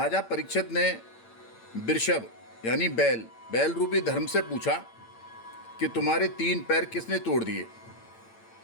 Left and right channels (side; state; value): right; late; 8.8 ms